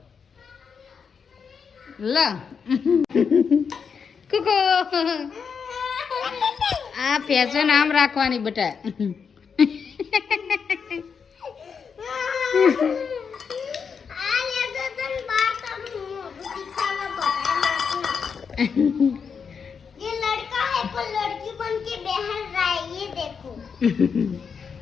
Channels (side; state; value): right; quieter; 6.2 dB